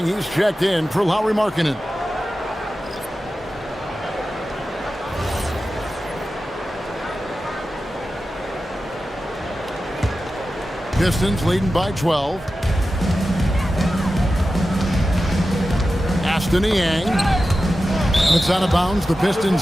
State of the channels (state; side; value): normal; both; correlation 0.93